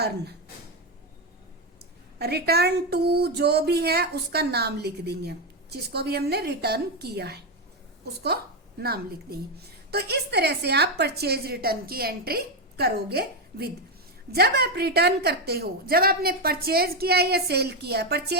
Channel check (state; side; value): normal; both; correlation 0.08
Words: रिटर्न टू जो भी है उसका नाम लिख देंगे, जिसको भी हमने रिटर्न किया है उसको नाम लिख देंगे। तो इस तरह से आप परचेज रिटर्न की एंट्री करोगे विद। जब आप रिटर्न करते हो, जब आपने परचेज किया या सेल किया,